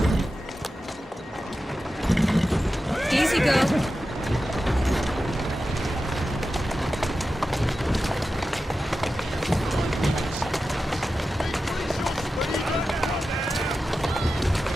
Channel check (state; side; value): normal; both; correlation 0.92